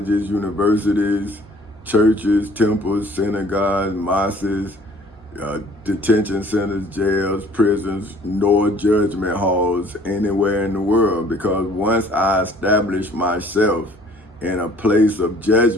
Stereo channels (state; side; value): normal; both; correlation 0.55